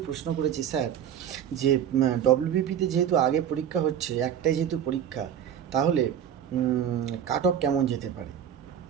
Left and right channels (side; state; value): left; quieter; 9.2 dB